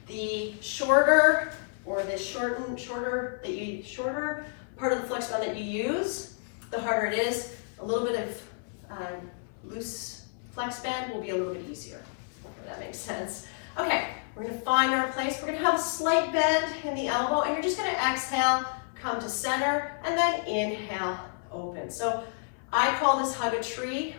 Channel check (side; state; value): right; silent; 58 dB below the other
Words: The shorter or the shorter part of the flex band that you use, the harder it is. A little bit of loose flex band will be a little bit easier. Hopefully that makes sense. Okay. We're going to find our place. We're going to have a slight bend in the elbow, and you're just going to exhale, come to center, and then inhale, open. So I call this hug a tree